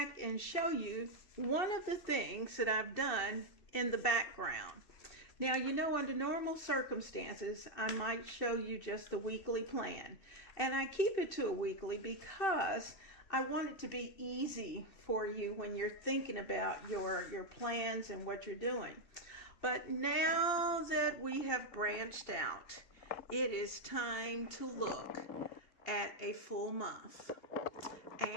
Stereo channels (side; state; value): right; late; 2.7 ms